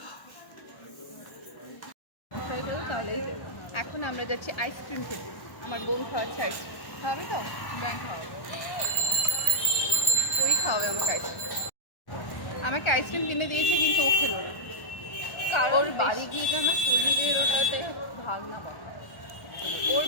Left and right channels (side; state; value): right; late; 1.1 ms